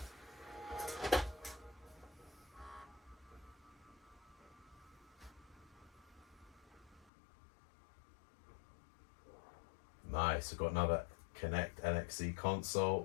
Nice, we've got another Connect NXE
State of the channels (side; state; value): right; drops out; at 7.1 s